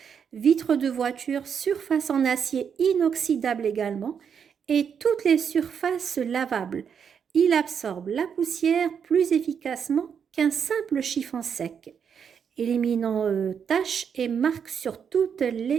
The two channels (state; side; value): quieter; left; 7.3 dB